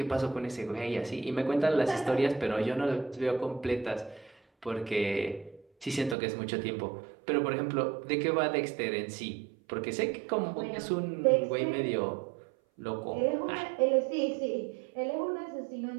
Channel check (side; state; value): left; drops out; at 6.2 s